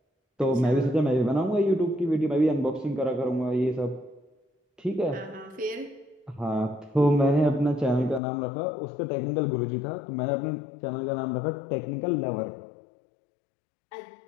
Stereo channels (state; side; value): drops out; right; at 8.2 s